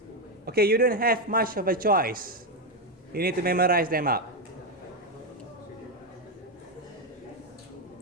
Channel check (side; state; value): both; normal; correlation 0.06